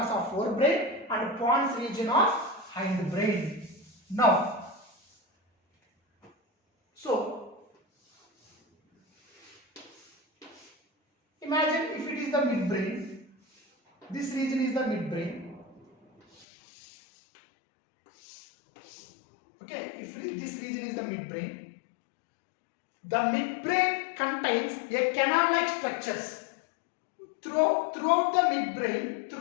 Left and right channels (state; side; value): drops out; right; at 16.4 s